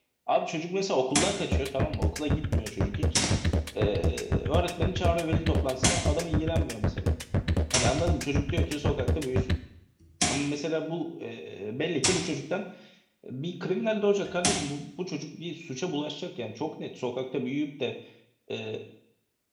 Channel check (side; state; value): both; identical; correlation 1.00